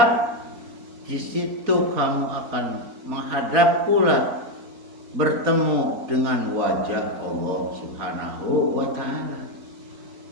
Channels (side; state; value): left; late; 4.3 ms